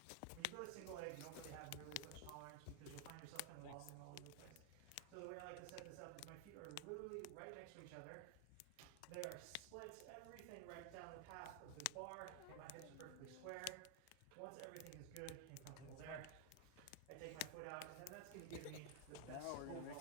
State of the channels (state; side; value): different; both; correlation 0.00